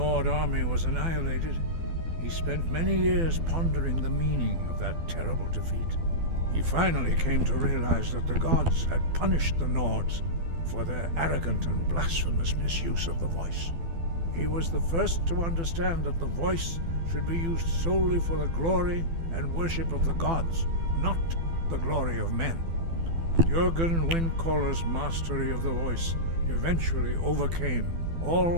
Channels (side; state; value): left; late; 12 ms